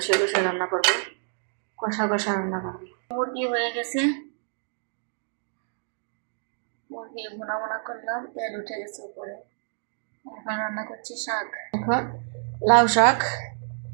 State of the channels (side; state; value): left; silent; digital silence